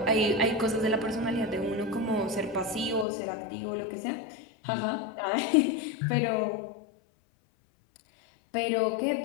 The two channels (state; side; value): drops out; right; at 3.1 s